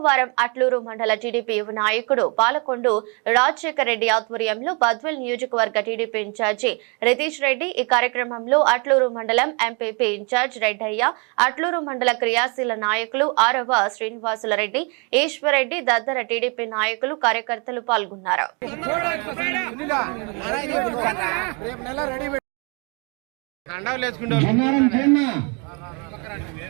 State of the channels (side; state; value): left; quieter; 33.1 dB